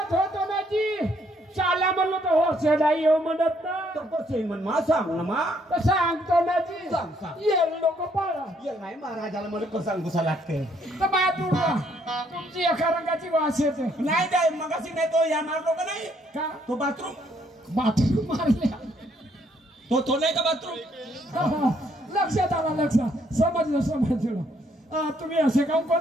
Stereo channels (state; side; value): normal; both; correlation 0.69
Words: होतो ना जी चाला म्हणलो तर हो नाही येऊ म्हणत ना तर कसं म्हण मा सांग ना मा तर सांगतो ना जी सांग ये लोक पाळा ये नाही महाराजाला मला कसं गुसा लागते तर बा तुमची एका रंगाची वास येते नाही काय मगाशी नाही तो या मारलो का नाही का तो बाथरूम मारल्या तो नाही का बाथरूम लक्षात आला लक्षात समजलं तुम्ही असे काम